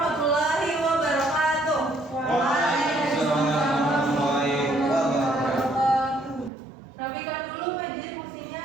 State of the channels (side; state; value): left; drops out; at 6.5 s